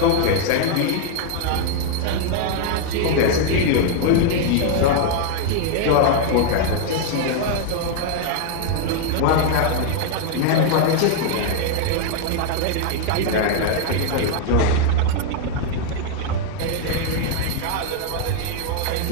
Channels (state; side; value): different; both; correlation 0.00